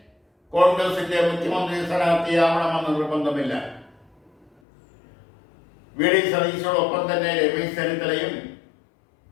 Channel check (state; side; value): drops out; right; at 4.5 s